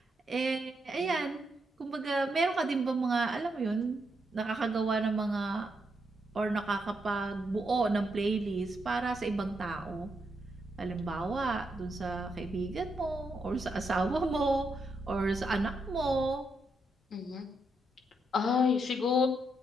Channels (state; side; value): normal; both; correlation 0.80